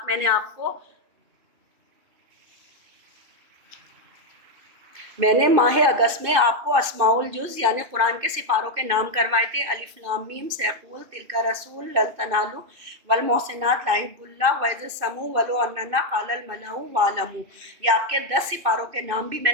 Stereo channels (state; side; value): late; left; 2.6 ms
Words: میں نے ماہ اگست میں آپ کو اسماء الجز یعنی قرآن کے سپاروں کے نام کروائے تھے. الف لام میم سیقول تلک رسول لن تنالوا والمحسنات لا یحب اللہ وإذ السمو ولو اننا قال الملأ واعلموا. یہ آپ کے 10 سپاروں کے نام بھی میں